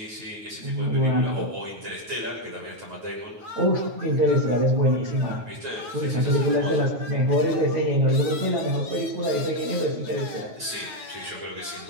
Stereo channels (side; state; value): left; late; 9.3 ms